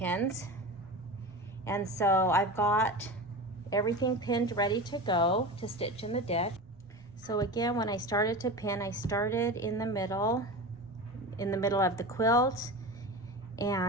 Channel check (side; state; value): right; noise; rumble, 26 dB below the sound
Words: And so I've got everything pinned ready to go to stitch in the ditch. So again, when I started to pin, I started in the middle of the quilt